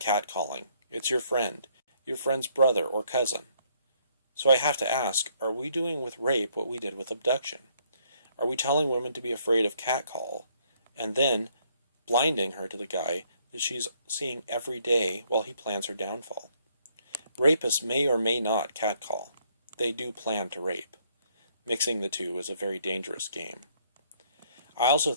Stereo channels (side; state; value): both; inverted; correlation -0.68